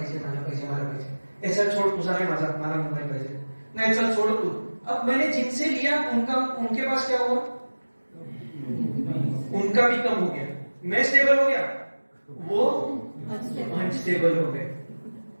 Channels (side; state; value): both; inverted; correlation -1.00